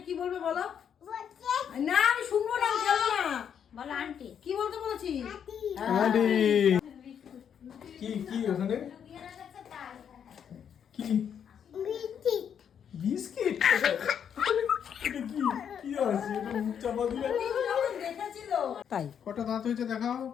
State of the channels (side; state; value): right; quieter; 8.2 dB